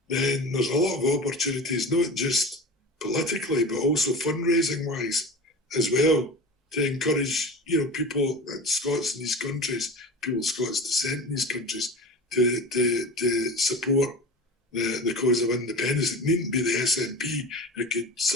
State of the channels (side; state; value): both; normal; correlation 0.32